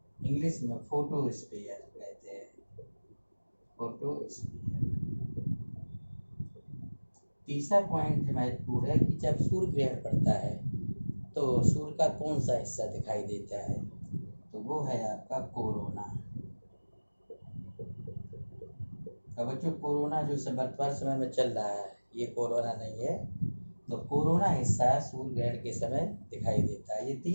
इंग्लिश में फोटोस्फीयर कहते हैं, फोटोस्फीयर। तीसरा पॉइंट महत्वपूर्ण है कि जब सूर्य ग्रहण पड़ता है तो सूर्य का कौन सा हिस्सा दिखाई देता है। तो वो है आपका कोरोना। अब बच्चों, कोरोना जो वर्तमान समय में चल रहा है, ये कोरोना नहीं है। तो कोरोना हिस्सा सूर्य ग्रहण के समय दिखाई देता है। ये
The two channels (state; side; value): inverted; both; correlation -1.00